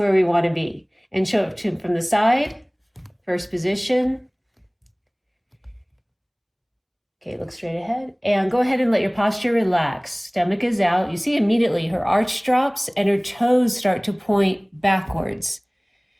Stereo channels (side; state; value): both; identical; correlation 1.00